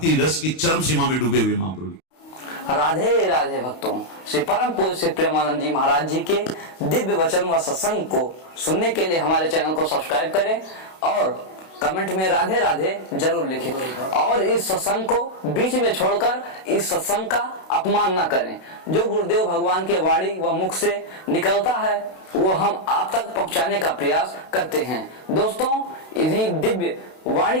रस की चरम सीमा में डूबे हुए महाप्रभु। राधे राधे भक्तों, श्री परम पूज्य श्री प्रेमानंद जी महाराज जी के दिव्य वचन व सत्संग को सुनने के लिए हमारे चैनल को सब्सक्राइब करें और कमेंट में राधे राधे जरूर लिखें। और इस सत्संग को बीच में छोड़कर इस सत्संग का अपमान न करें। जो गुरुदेव भगवान के वाणी व मुख से निकलता है वो हम आप तक पहुंचाने का प्रयास करते हैं। दोस्तों, इन्हीं दिव्य वाणी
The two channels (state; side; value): late; right; 32 ms